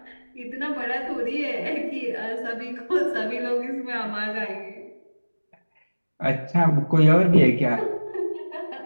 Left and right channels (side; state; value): both; inverted; correlation -1.00